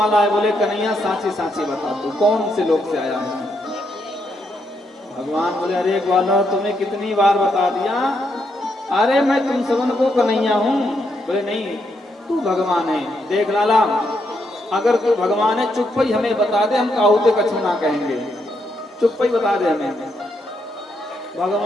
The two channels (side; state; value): both; normal; correlation 0.79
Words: आए, बोले कन्हैया साची साची बता तू कौन से लोग से आया है। भगवान बोले, अरे ग्वालो तुम्हें कितनी बार बता दिया, अरे मैं तुम सबन को कन्हैया हूँ। बोले नहीं तू भगवान है। देख लाला, अगर तू भगवान है चुप ही हमें बता दे, हम काहुते कछु ना कहेंगे, चुप ही बता दे हमें।